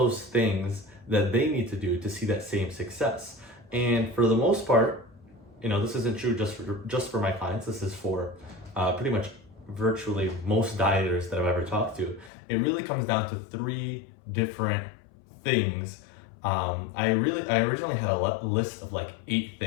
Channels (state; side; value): drops out; right; at 12.3 s